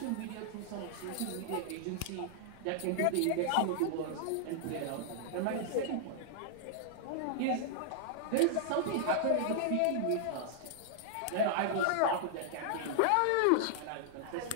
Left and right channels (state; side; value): different; both; correlation -0.01